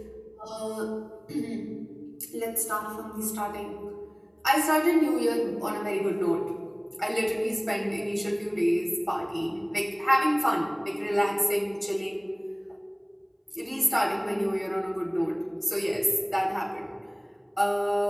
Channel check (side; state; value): both; identical; correlation 1.00